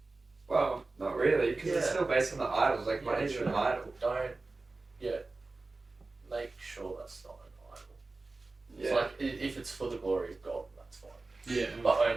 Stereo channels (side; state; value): left; quieter; 3.5 dB